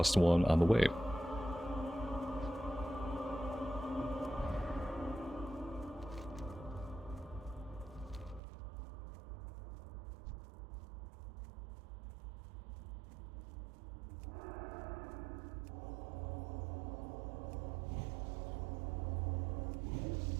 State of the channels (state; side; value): drops out; left; at 8.4 s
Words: one on the way.